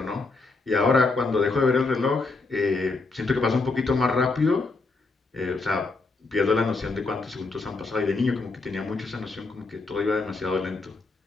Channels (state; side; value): quieter; right; 3.7 dB